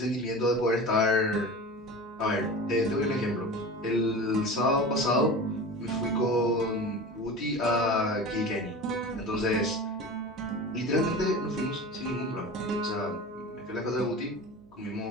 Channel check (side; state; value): right; noise; hum, 27 dB below the sound